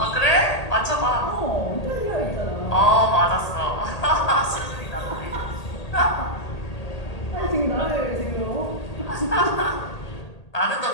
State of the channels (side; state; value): right; late; 1.8 ms